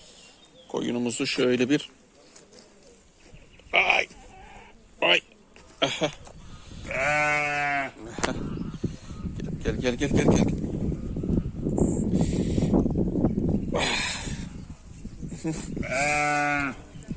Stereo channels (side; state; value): both; identical; correlation 1.00